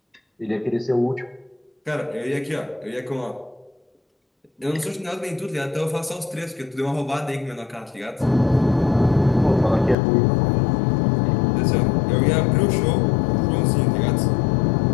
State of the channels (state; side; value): drops out; right; at 10.0 s